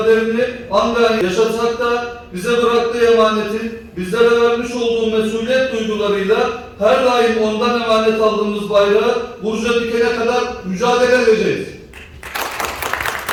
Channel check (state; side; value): identical; both; correlation 1.00